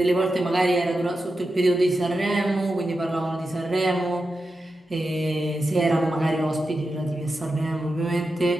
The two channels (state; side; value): normal; both; correlation 0.90